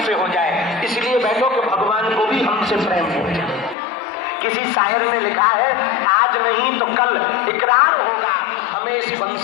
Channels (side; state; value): right; drops out; at 3.8 s